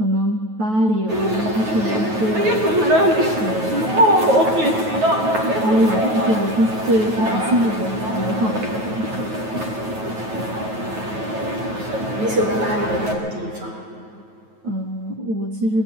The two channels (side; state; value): left; late; 9.3 ms